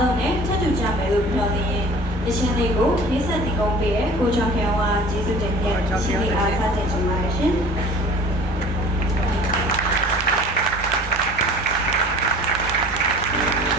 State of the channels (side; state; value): right; noise; hum, 12 dB below the sound